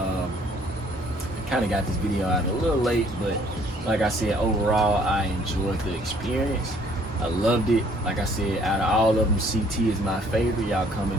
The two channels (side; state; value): both; normal; correlation 0.61